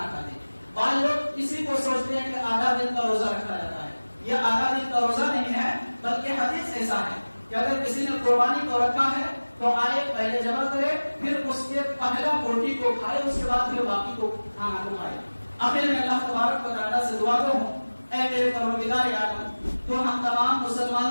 کھاتے. بعض لوگ اسی کو سوچتے ہیں کہ آدھا دن کا روزہ رکھا جاتا ہے. یہ آدھا دن کا روزہ نہیں ہے، بلکہ حدیث ایسا ہے کہ اگر کسی نے قربانی کو رکھا ہے تو آئے پہلے جمع کرے، پھر اس کے پہلا روٹی کو کھائے، اس کے بعد پھر باقی کو کھانا کو کھائے. آخر میں اللہ تبارک و تعالیٰ سے دعا گو ہوں، اے میرے پروردگار عالم، تو ہم تمام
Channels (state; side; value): inverted; both; correlation -1.00